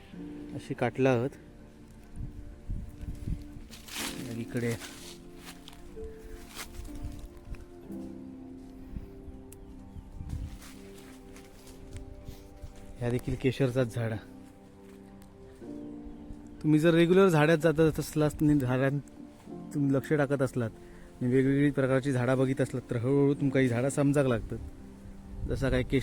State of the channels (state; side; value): identical; both; correlation 1.00